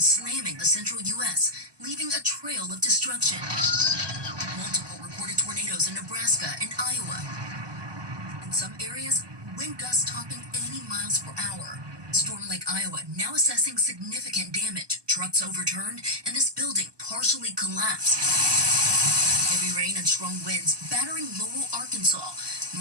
slamming the central U.S., leaving a trail of destruction. Multiple reported tornadoes in Nebraska and Iowa. In some areas, wind gusts topping 80 miles per hour. Storm Lake, Iowa, now assessing significant damage. Trucks overturned, and this building partially collapsed. Heavy rain and strong winds battering Lowell, Arkansas.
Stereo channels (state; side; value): late; left; 1.2 ms